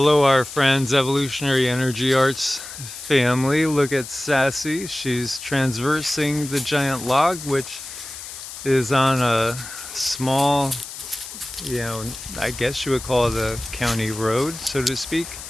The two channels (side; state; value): left; noise; hiss, 12 dB below the sound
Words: our friends, Evolutionary Energy Arts family. Look at Sassy. She's transversing the giant log, which is on a small, you know, I guess you would call it a county road, so to speak,